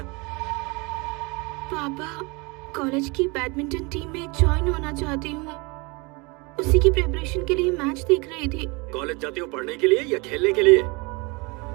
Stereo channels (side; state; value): left; quieter; 27.7 dB